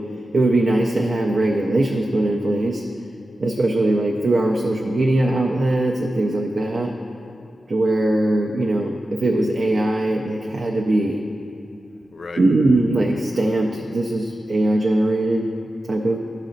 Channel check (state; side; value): normal; both; correlation 0.92